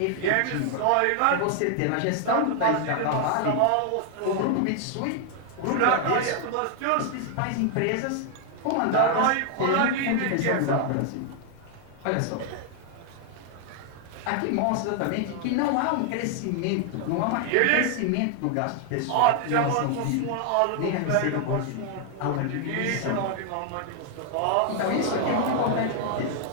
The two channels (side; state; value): both; different; correlation 0.00